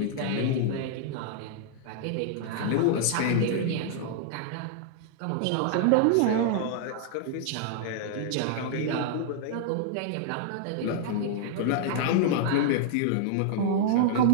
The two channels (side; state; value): both; different; correlation -0.01